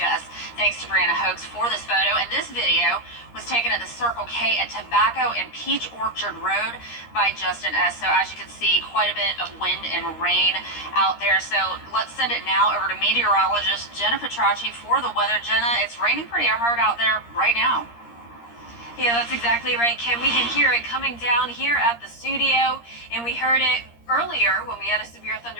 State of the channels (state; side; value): late; right; 13 ms